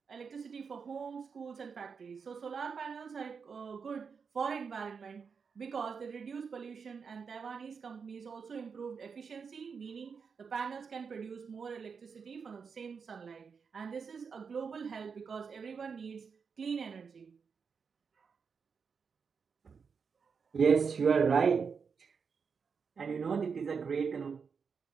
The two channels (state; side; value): quieter; left; 5.8 dB